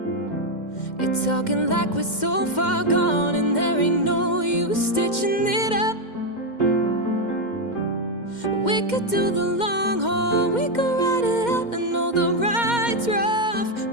You're talking like we're so far gone and there ain't no use stitching it up. We could do the long haul, we could ride it out. I know the ride's rough,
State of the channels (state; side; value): late; right; 2.1 ms